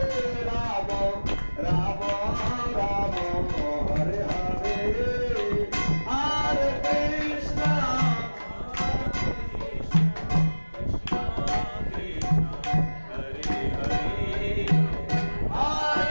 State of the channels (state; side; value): inverted; both; correlation -1.00